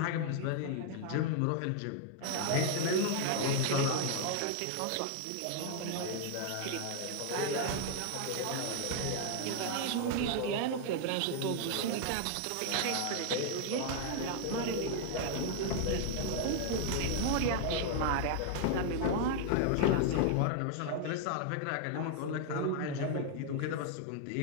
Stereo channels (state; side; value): different; both; correlation 0.00